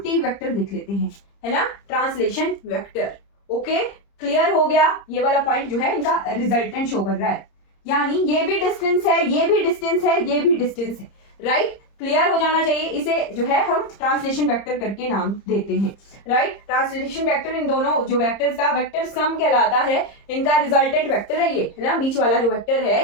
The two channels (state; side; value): late; right; 30 ms